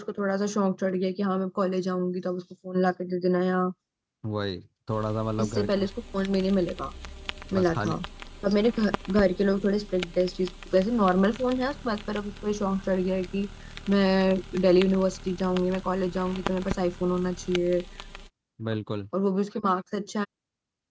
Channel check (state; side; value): identical; both; correlation 1.00